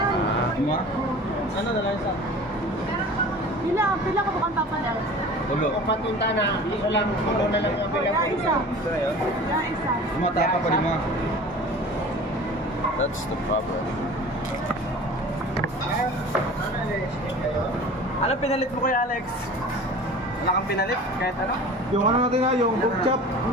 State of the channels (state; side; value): normal; both; correlation 0.40